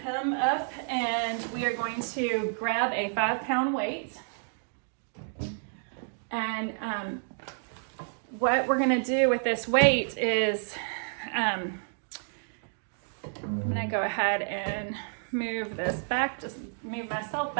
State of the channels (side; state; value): left; silent; digital silence